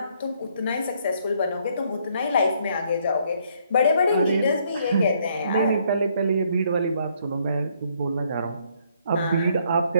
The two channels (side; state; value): both; inverted; correlation -0.68